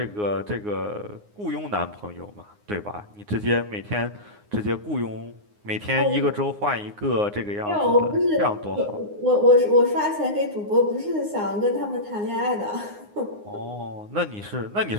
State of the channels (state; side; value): late; left; 9.7 ms